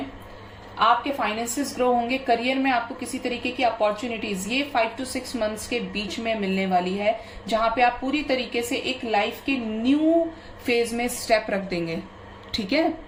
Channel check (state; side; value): identical; both; correlation 1.00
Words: आपके फाइनेंसेस ग्रो होंगे। करियर में आपको किसी तरीके की अपॉर्चुनिटीज ये 5 to 6 मंथ्स के बीच में मिलने वाली है, जहां पे आप पूरी तरीके से एक लाइफ के न्यू फेज में स्टेप रख देंगे, ठीक है।